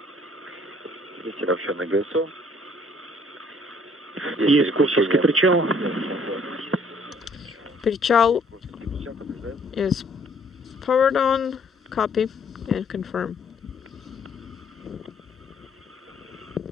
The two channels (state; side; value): normal; both; correlation 0.61